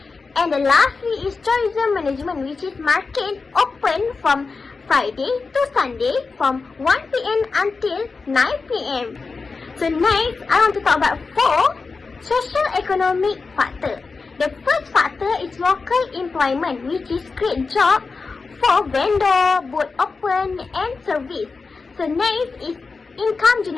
And the lastly is tourism management, which is market open from Friday to Sunday from 1 p.m. until 9 p.m. So next, I want to talk about four socio-economic factors. The first factor is local employment, which is create job for vendor, boat open and service. So next is income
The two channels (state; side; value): quieter; right; 4.4 dB